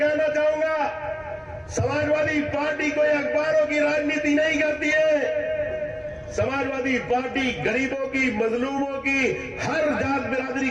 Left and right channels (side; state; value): both; identical; correlation 1.00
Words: चाहूंगा, समाजवादी पार्टी कोई अखबारों की राजनीति नहीं करती है। समाजवादी पार्टी गरीबों की, मजलूमों की, हर जात बिरादरी